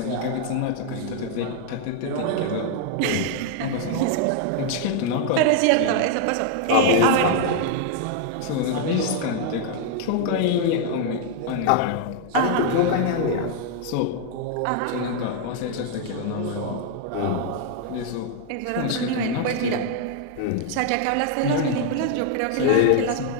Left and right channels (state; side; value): different; both; correlation 0.00